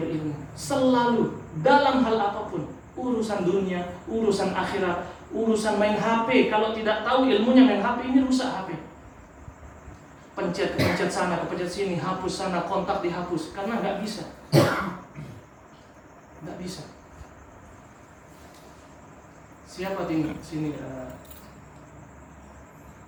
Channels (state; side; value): identical; both; correlation 1.00